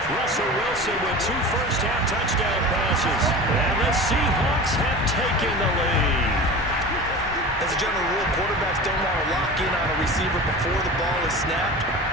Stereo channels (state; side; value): normal; both; correlation 0.34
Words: Russell Wilson with 2 first-half touchdown passes, and the Seahawks have taken the lead. As a general rule, quarterbacks don't want to lock in on a receiver before the ball is snapped,